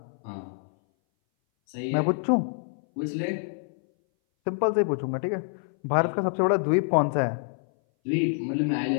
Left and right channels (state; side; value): silent; right; 59 dB below the other